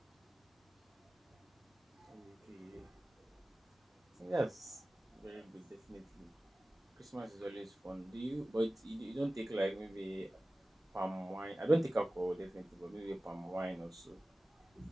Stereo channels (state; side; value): normal; both; correlation 0.96